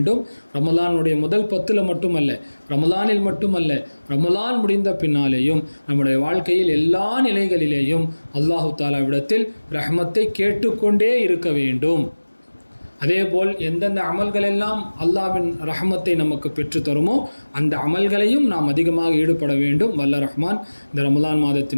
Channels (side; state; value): both; inverted; correlation -1.00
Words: ரமலானுடைய முதல் 10 மட்டுமல்ல, ரமலானில் மட்டுமல்ல, ரமலான் முடிந்த பின்னாலேயும் நம்முடைய வாழ்க்கையில் எல்லா நிலைகளிலேயும் அல்லாஹு தாலாவிடத்தில் ரஹ்மத்தை கேட்டுக்கொண்டே இருக்க வேண்டும். அதேபோல் எந்தெந்த அமல்களெல்லாம் அல்லாஹ்வின் ரஹ்மத்தை நமக்கு பெற்று தருமோ அந்த அமல்களையும் நாம் அதிகமாக ஈடுபட வேண்டும். வல்ல ரஹ்மான் இந்த ரமலான்